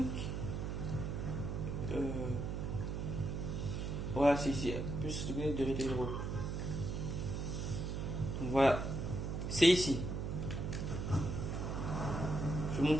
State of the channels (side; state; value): right; noise; hum, 2 dB below the sound